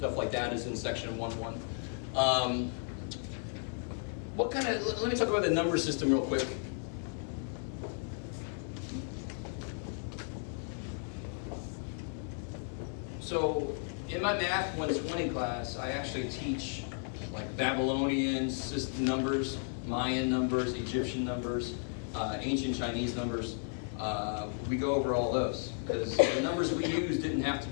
like that is in section 1.1. Let me talk about the number system real quick. So in my Math 120 class, I actually teach like Babylonian numbers, Mayan numbers, Egyptian numbers, ancient Chinese numbers. We go over all those because the numbers we use didn't have to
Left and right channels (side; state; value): right; silent; 55 dB below the other